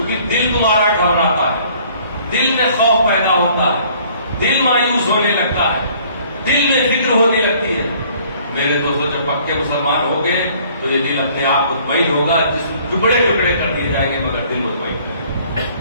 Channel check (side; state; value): both; inverted; correlation -0.57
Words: دل تمہارا گھبراتا ہے، دل میں خوف پیدا ہوتا ہے، دل مایوس ہونے لگتا ہے، دل میں فکر ہونے لگتی ہے. میرے دوستوں جب پکے مسلمان ہو گئے تو یہ دل اپنے آپ مطمئن ہوگا. جس ٹکڑے ٹکڑے کر دیے جائیں گے مگر دل مطمئن رہے گا.